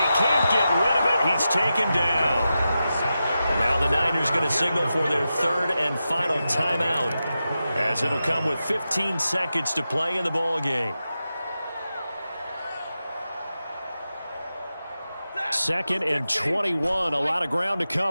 he can't get rid of it. He's taken down. Now the Niners going to signal for their 3rd and final timeout, as it'll come with 15 seconds to play in the ball game. 2nd and 21, a lot of ground to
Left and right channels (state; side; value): inverted; both; correlation -0.91